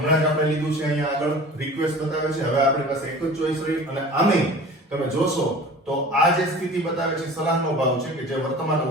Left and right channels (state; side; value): normal; both; correlation 0.41